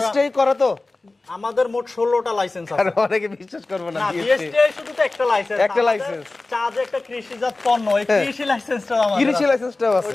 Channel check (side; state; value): right; quieter; 3.2 dB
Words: করা তো? আমাদের মোট 16টা লাইসেন্স আর আছে। অনেকে বিশ্বাস করবে না না বিএসটিআই। বিএসটিআই শুধু তো একটা লাইসেন্স, একটা লাইসেন্স। চা যে একটা কৃষিজাত পণ্য, এই কৃষি লাইসেন্সটা আমাদের কৃষি লাইসেন্সটাও আছে।